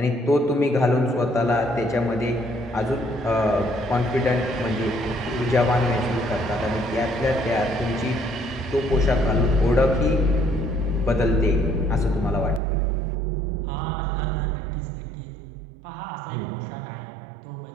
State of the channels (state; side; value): drops out; left; at 12.6 s